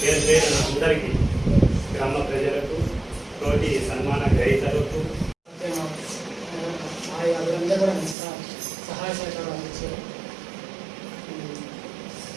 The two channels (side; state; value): left; drops out; at 8.2 s